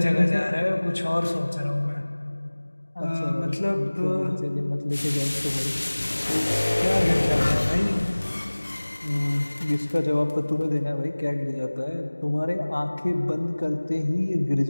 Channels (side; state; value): both; inverted; correlation -1.00